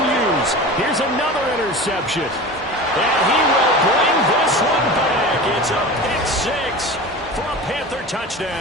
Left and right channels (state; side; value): normal; both; correlation 0.33